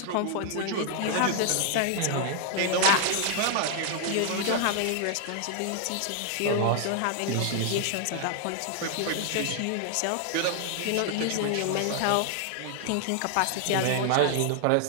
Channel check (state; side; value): different; both; correlation 0.00